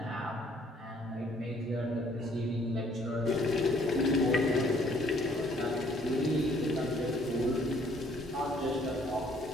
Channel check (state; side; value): normal; both; correlation 0.62